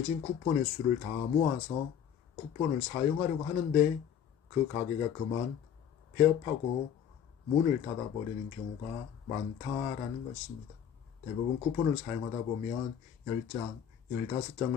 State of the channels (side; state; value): right; quieter; 8.7 dB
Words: 쿠폰의 수를 다 모아서 쿠폰을 사용하려고 하는데 그 가게가 그만 폐업하고 문을 닫아버리는 경우가 많다라는 것입니다. 대부분 쿠폰을 사용하다 보면 10장,